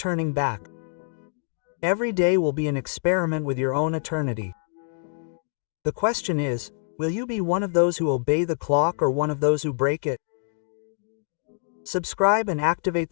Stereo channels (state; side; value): silent; right; digital silence